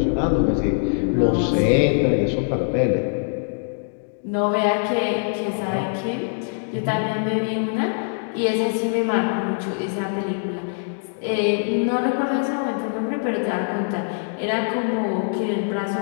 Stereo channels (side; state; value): right; silent; digital silence